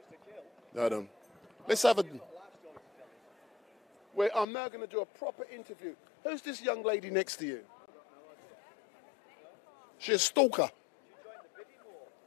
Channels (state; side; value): drops out; right; at 4.5 s